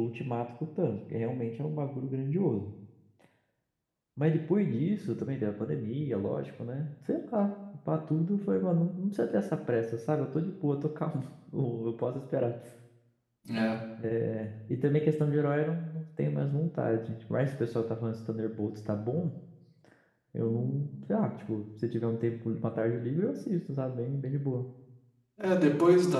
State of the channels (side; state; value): both; identical; correlation 1.00